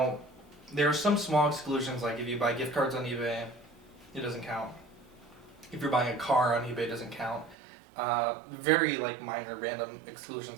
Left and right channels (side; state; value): left; drops out; at 7.6 s